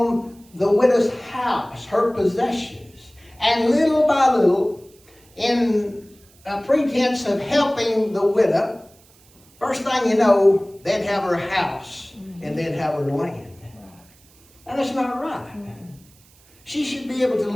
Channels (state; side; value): noise; right; hiss, 29 dB below the sound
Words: the widow's house, her possessions, and little by little, in a pretense of helping the widow, first thing you know, they'd have her house and they'd have her land. And that's not right. She should be able to